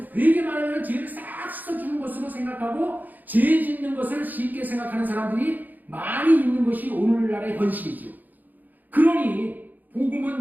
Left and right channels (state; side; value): late; left; 0.084 ms